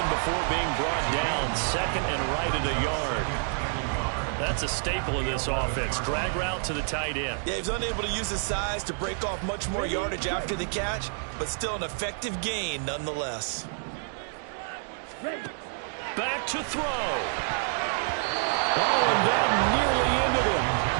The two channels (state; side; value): silent; left; 56 dB below the other